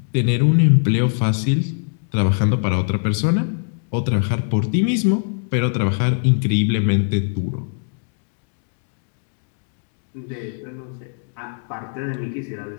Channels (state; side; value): silent; right; digital silence